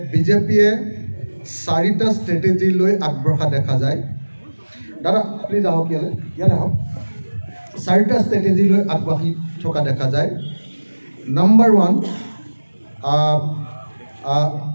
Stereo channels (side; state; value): both; inverted; correlation -1.00